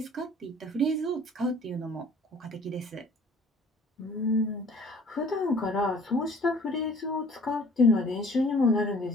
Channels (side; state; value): both; normal; correlation 0.52